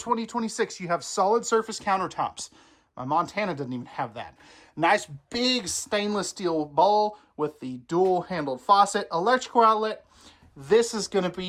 you have solid surface countertops. My Montana doesn't even have that. Nice big stainless steel bowl with the dual handled faucet, electrical outlet. This is going to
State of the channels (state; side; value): identical; both; correlation 1.00